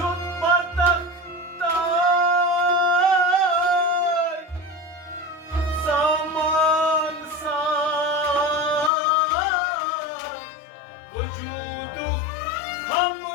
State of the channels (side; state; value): right; drops out; at 8.9 s